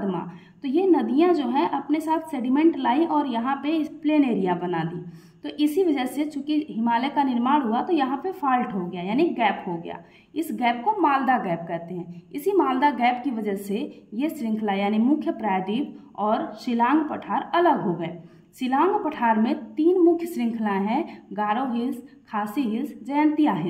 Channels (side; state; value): both; identical; correlation 1.00